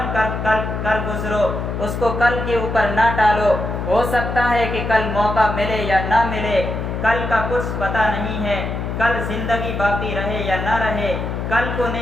کر گزرو، اس کو کل کے اوپر نہ ٹالو۔ ہو سکتا ہے کہ کل موقع ملے یا نہ ملے، کل کا کچھ پتہ نہیں ہے، کل زندگی باقی رہے یا نہ رہے، کل کو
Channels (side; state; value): left; noise; hum, 4 dB below the sound